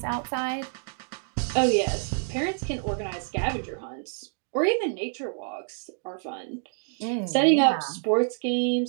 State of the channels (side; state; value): left; silent; 58 dB below the other